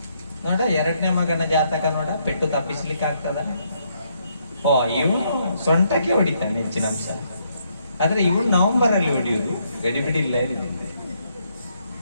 ನೋಡ, 2ನೇ ಮಗನ ಜಾತಕ ನೋಡ, ಪೆಟ್ಟು ತಪ್ಪಿಸ್ಲಿಕ್ಕೆ ಆಗ್ತದ? ಇವನು ಸೊಂಟಕ್ಕೆ ಹೊಡಿತಾನೆ ಹೆಚ್ಚಿನ ಅಂಶ. ಆದ್ರೆ ಇವನು ನವೆಂಬರ್ ಅಲ್ಲಿ ಹೊಡಿಯುದು, ಗಡಿಬಿಡಿಲ್ಲ.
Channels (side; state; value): both; inverted; correlation -0.74